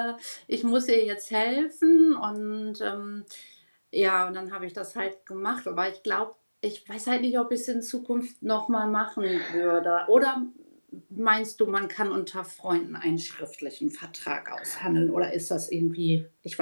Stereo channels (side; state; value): both; inverted; correlation -1.00